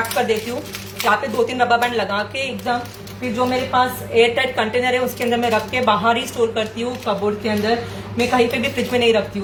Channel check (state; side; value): identical; both; correlation 1.00